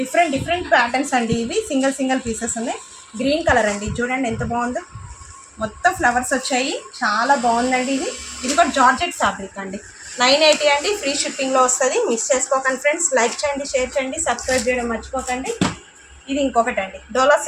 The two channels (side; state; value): both; identical; correlation 1.00